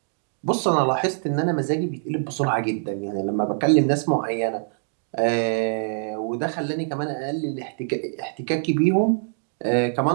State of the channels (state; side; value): silent; left; digital silence